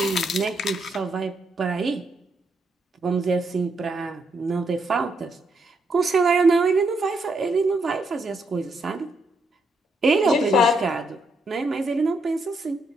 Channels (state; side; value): normal; both; correlation 0.78